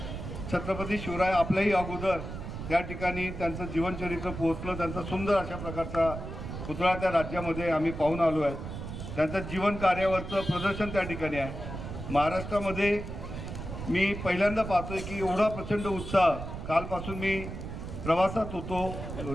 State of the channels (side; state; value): right; noise; rumble, 8 dB below the sound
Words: छत्रपती शिवराय आपल्याही अगोदर त्या ठिकाणी त्यांचं जीवनचरित्र पोहोचलं. त्यांचा सुंदर अशा प्रकारचा पुतळा त्या राज्यामध्ये आम्ही पाहून आलो आहे. त्यांचं जीवन कार्यावरचं प्रदर्शन त्या ठिकाणी आहे. महाराष्ट्रामध्ये मी पहिल्यांदा पाहतोय की एवढा प्रचंड उत्साह. कालपासून मी प्रवासात होतो,